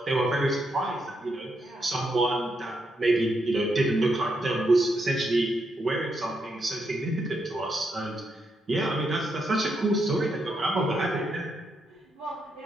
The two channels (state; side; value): normal; both; correlation 0.80